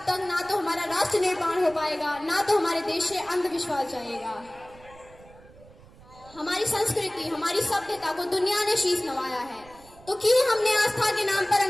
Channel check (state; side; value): noise; right; rumble, 23 dB below the sound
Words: तक ना तो हमारा राष्ट्र निर्माण हो पाएगा, ना तो हमारे देश से अंधविश्वास जाएगा। हमारी संस्कृति, हमारी सभ्यता को दुनिया ने शीश नवाया है, तो क्यों हमने आस्था के नाम पर